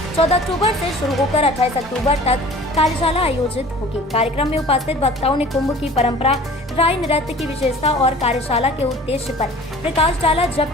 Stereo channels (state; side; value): normal; both; correlation 0.45